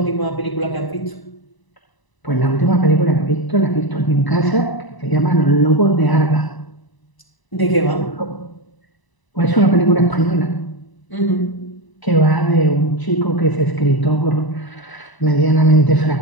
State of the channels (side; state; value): right; late; 1.0 ms